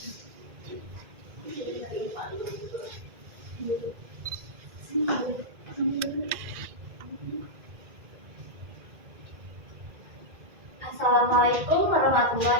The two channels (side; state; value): left; late; 1.9 ms